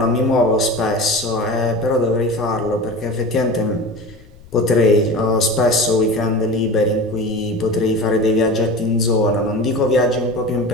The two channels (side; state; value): left; noise; rumble, 23 dB below the sound